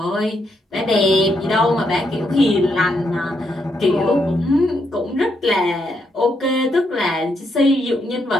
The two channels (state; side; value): normal; both; correlation 0.78